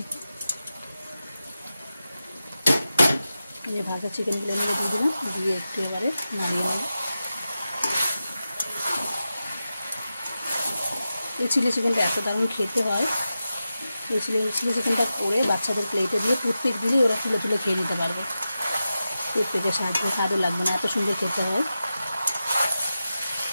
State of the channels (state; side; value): inverted; both; correlation -0.92